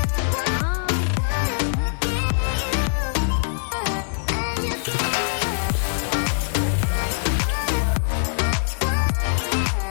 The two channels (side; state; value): right; silent; 63 dB below the other